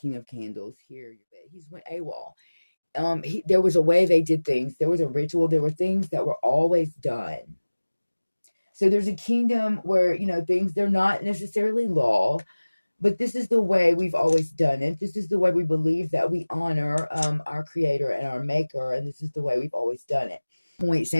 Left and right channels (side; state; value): both; inverted; correlation -1.00